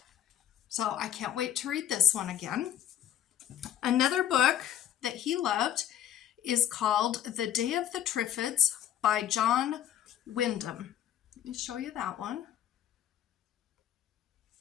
So I can't wait to read this one again. Another book that he loved is called The Day of the Triffids by John Wyndham. Let me show you that one.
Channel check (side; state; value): right; quieter; 10.7 dB